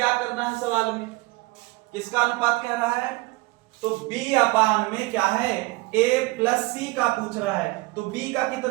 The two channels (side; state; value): left; quieter; 23.4 dB